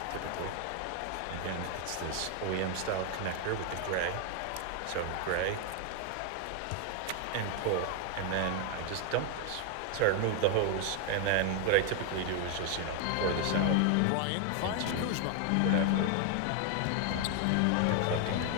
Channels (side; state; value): both; different; correlation 0.00